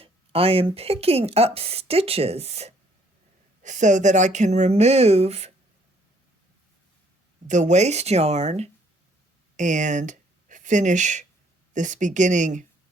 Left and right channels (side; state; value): both; normal; correlation 0.64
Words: I am picking up stitches so that I can remove the waste yarn and finish this beginning